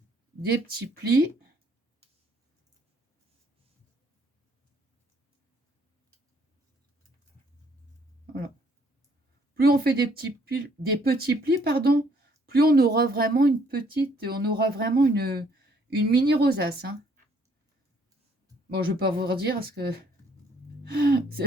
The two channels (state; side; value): normal; both; correlation 0.65